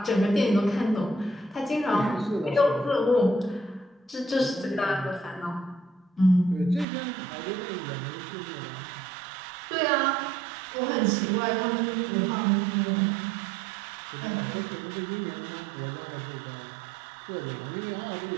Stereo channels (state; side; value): drops out; left; at 6.9 s